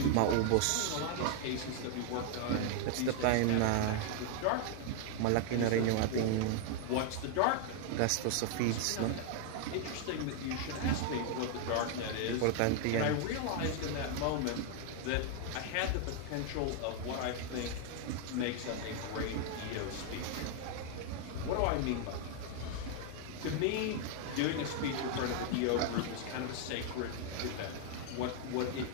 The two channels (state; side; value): different; both; correlation 0.00